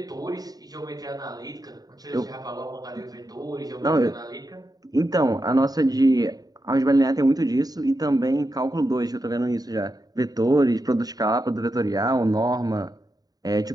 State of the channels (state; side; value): late; left; 0.18 ms